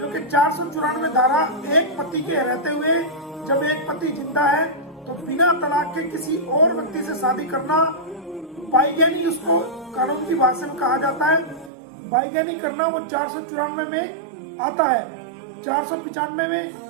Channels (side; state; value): left; drops out; at 11.7 s